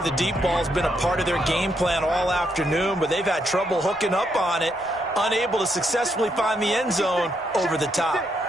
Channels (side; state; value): both; normal; correlation 0.77